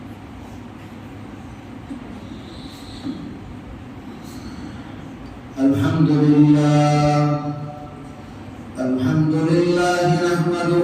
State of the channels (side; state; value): both; identical; correlation 1.00